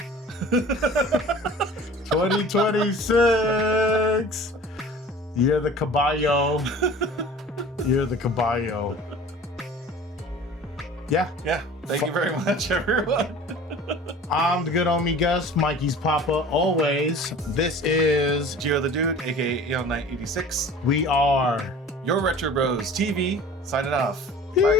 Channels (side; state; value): both; normal; correlation 0.43